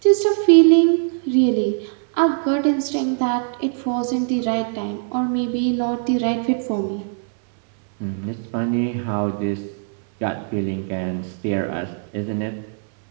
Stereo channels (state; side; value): silent; left; 65 dB below the other